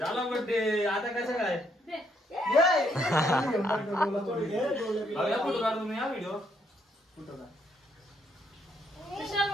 बर्थडे. आता कसं काय फोटो काढ तुम्ही हा व्हिडिओ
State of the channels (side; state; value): both; normal; correlation 0.72